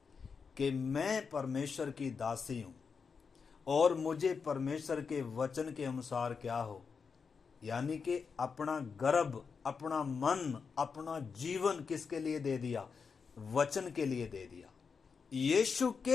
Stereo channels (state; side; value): quieter; right; 5.6 dB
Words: कि मैं परमेश्वर की दासी हूं और मुझे परमेश्वर के वचन के अनुसार क्या हो, यानी कि अपना गर्भ, अपना मन, अपना जीवन किसके लिए दे दिया, वचन के लिए दे दिया, यीशु